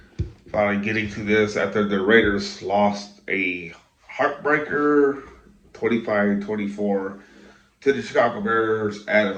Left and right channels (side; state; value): both; identical; correlation 1.00